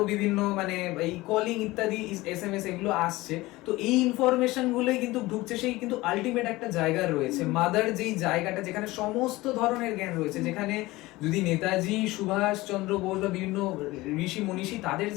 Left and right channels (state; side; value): quieter; right; 19.7 dB